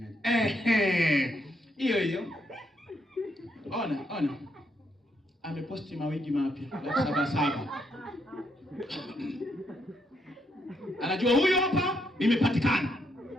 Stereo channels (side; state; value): both; normal; correlation 0.76